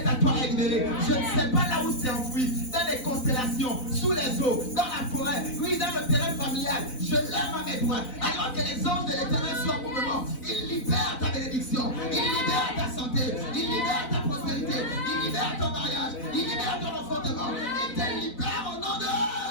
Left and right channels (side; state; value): right; late; 4.0 ms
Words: à toi est libéré. Je ne sais pas là où c'est enfoui, dans les constellations, sous les eaux, dans la forêt, oui, dans le terrain familial. Je lève ma main droite. Alors que les anges de l'Éternel sont en mouvement, ils libèrent ta bénédiction, ils libèrent ta santé, ils libèrent ta prospérité, ils libèrent ton mariage, ils libèrent ton enfantement. Ils te libèrent au nom de...